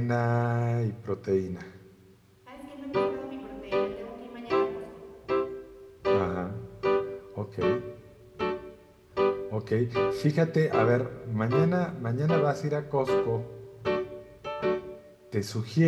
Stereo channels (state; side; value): identical; both; correlation 1.00